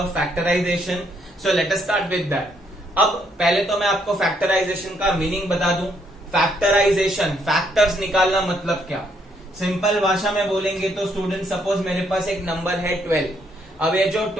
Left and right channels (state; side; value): normal; both; correlation 0.72